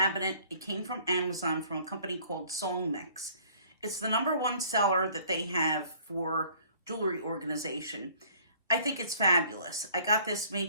It came from Amazon from a company called Song Mix. It's the #1 seller that they have for jewelry organization. I think it's fabulous. I got this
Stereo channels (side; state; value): both; inverted; correlation -0.56